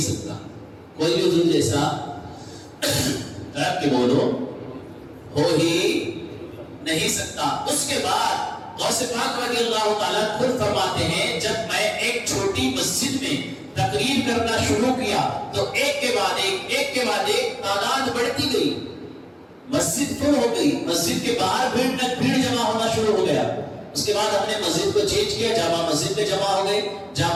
کوئی بھی حضور جیسا رب کے بولو ہو ہی نہیں سکتا. اس کے بعد غوث پاک رضی اللہ تعالیٰ خود فرماتے ہیں جب میں ایک چھوٹی مسجد میں تقریر کرنا شروع کیا تو ایک کے بعد ایک تعداد بڑھتی گئی، مسجد فل ہو گئی، مسجد کے باہر بھیڑ جمع ہونا شروع ہو گیا. اس کے بعد ہم نے مسجد کو چینج کیا، جامع مسجد میں جمع ہو گئے،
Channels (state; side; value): identical; both; correlation 1.00